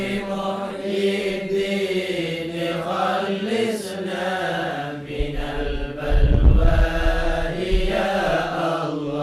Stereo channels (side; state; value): both; identical; correlation 1.00